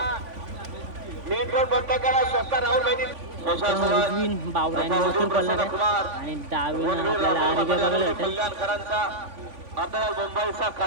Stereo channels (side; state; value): left; late; 3.5 ms